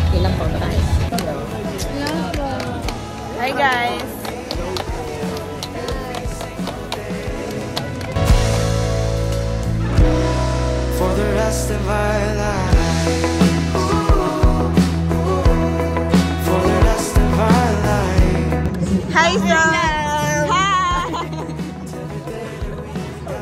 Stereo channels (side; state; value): both; identical; correlation 1.00